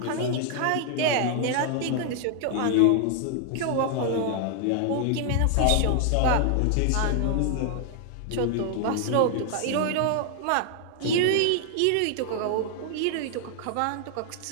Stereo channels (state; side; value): different; both; correlation 0.00